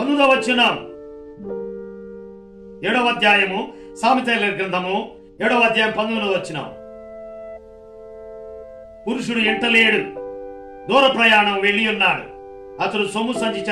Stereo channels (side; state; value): both; identical; correlation 1.00